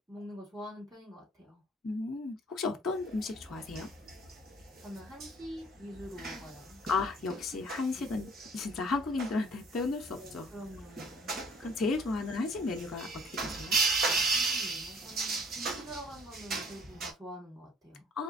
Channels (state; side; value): normal; both; correlation 0.55